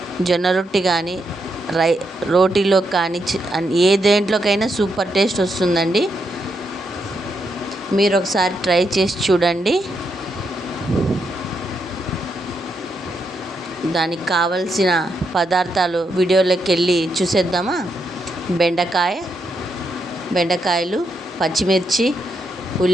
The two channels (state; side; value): normal; both; correlation 0.81